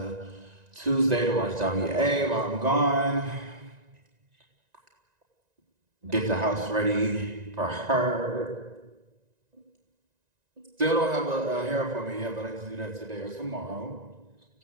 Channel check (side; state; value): left; late; 1.9 ms